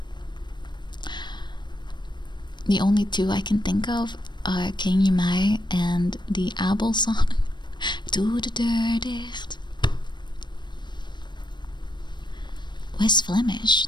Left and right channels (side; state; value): right; late; 0.22 ms